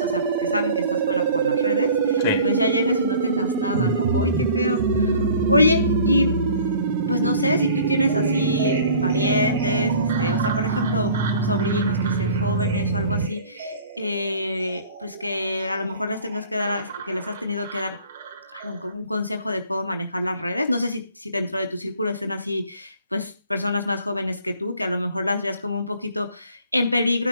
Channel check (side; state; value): both; inverted; correlation -0.49